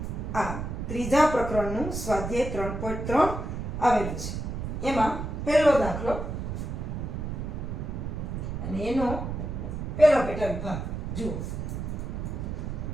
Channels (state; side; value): noise; right; rumble, 4 dB below the sound